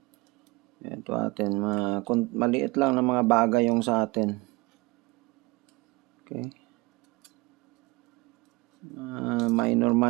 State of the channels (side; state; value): left; quieter; 22.6 dB